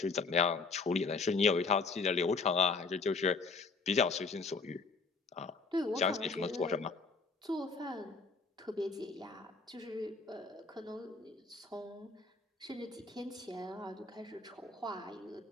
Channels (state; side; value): quieter; right; 4.2 dB